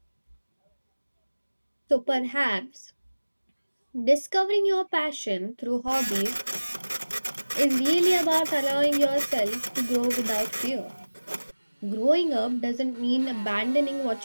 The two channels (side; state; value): both; inverted; correlation -1.00